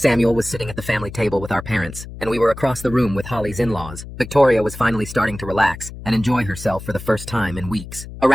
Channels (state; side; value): noise; left; hum, 13 dB below the sound